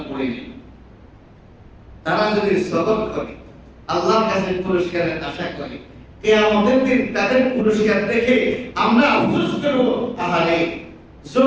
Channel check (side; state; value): both; identical; correlation 1.00